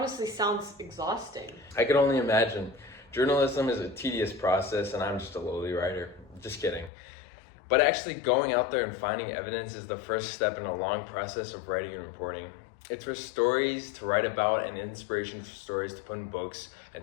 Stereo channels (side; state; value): right; drops out; at 6.9 s